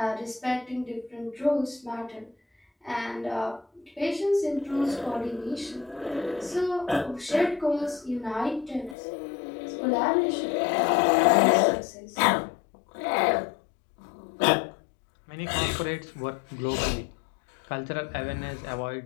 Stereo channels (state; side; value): drops out; right; at 9.0 s